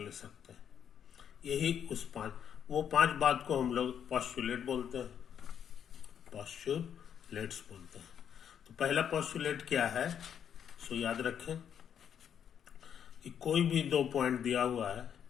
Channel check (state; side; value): quieter; right; 8.6 dB